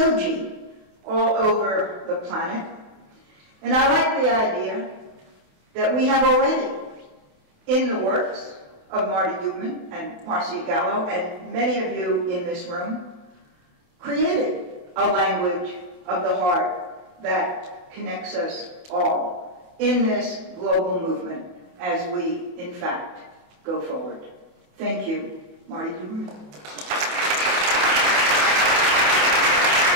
all over the planet. And I like the idea that we have already, in the works of Marty Duberman and Marcia Gallo and many of you in this room, created a language of the heart that connects us all in this global movement as we, in fact, go forward. Thank you, Marty Duberman.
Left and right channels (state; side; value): late; left; 28 ms